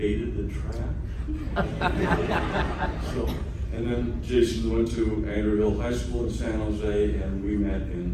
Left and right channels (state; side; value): identical; both; correlation 1.00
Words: the trap. So, and then Jason went to Andrew High School in San Jose, and we met